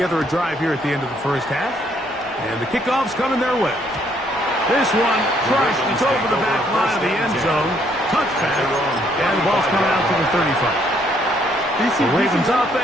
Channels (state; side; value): normal; both; correlation 0.68